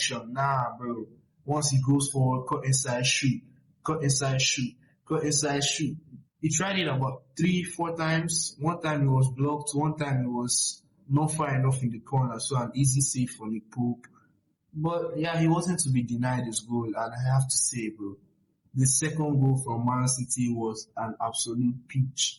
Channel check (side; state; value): both; identical; correlation 1.00